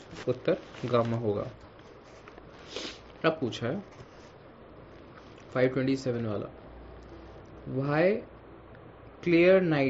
उत्तर गामा होगा। अब पूछा है 527 वाला why clear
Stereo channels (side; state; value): both; identical; correlation 1.00